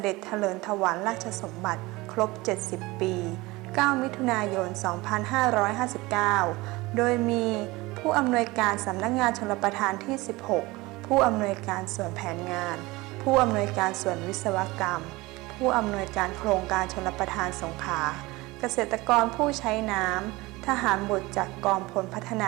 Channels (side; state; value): left; quieter; 21.6 dB